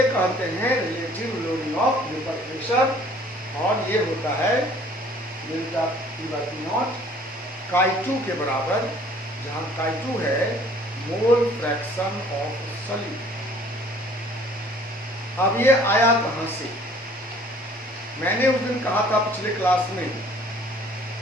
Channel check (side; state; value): both; normal; correlation 0.55